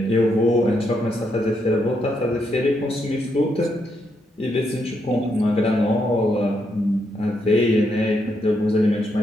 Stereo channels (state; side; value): normal; both; correlation 0.79